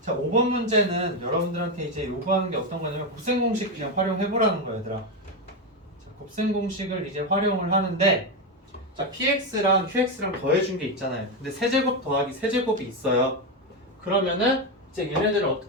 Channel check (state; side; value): normal; both; correlation 0.09